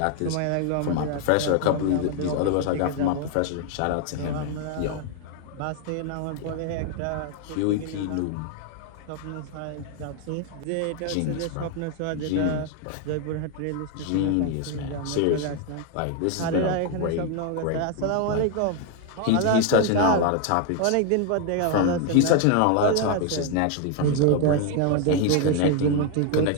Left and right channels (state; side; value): different; both; correlation 0.01